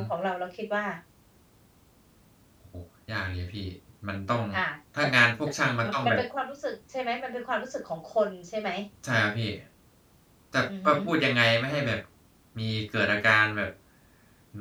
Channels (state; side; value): identical; both; correlation 1.00